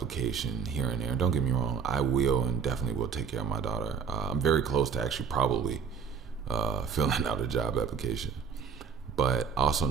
here and there. Don't get me wrong, I will and definitely will take care of my daughter. I'm very close to actually probably filling out a job application. But I also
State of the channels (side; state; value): left; quieter; 6.3 dB